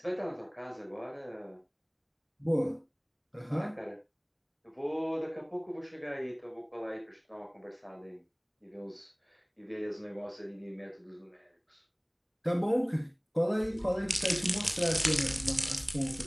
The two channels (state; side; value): identical; both; correlation 1.00